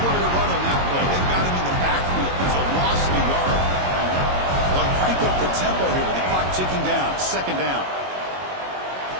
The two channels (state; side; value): late; left; 22 ms